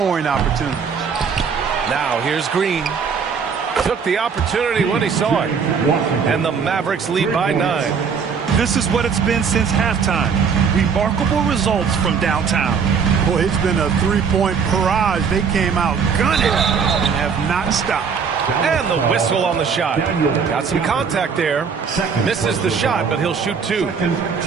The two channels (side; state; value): left; quieter; 6.1 dB